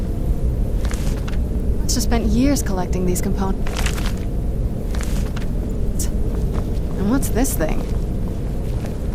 Must have spent years collecting these components. And what's this thing?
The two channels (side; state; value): both; identical; correlation 1.00